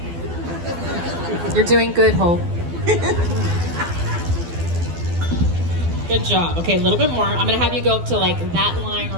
You're doing good, Holt. Good job. Okay, a little bit more. I'm gonna have you go up to like that line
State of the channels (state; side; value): late; left; 12 ms